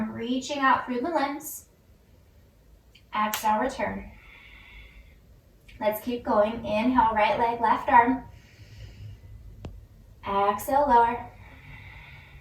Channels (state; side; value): identical; both; correlation 1.00